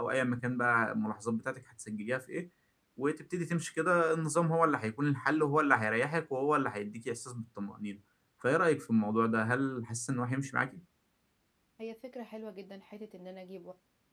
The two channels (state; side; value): identical; both; correlation 1.00